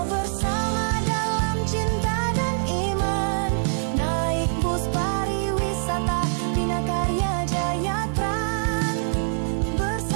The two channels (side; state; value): left; silent; digital silence